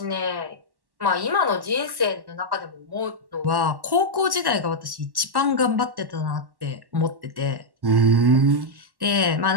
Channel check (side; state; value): left; late; 1.1 ms